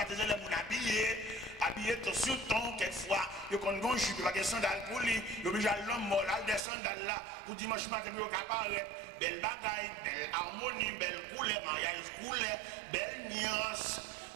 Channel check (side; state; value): left; drops out; at 6.6 s